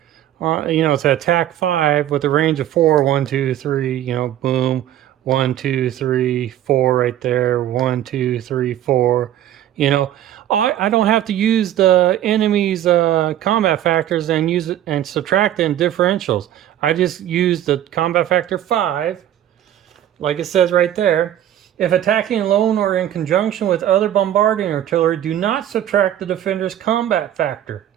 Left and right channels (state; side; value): quieter; left; 11.7 dB